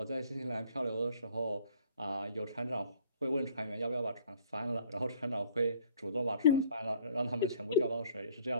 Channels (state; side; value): inverted; both; correlation -0.58